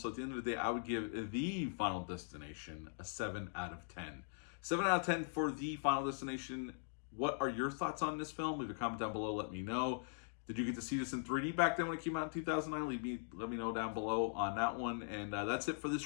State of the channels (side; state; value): right; silent; digital silence